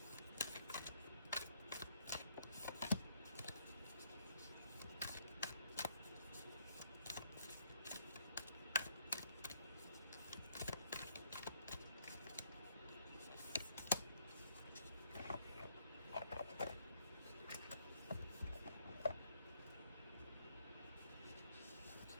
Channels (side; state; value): both; inverted; correlation -0.70